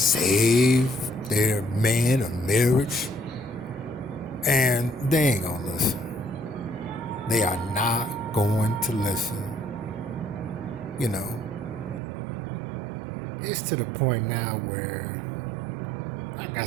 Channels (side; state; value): left; drops out; at 12.0 s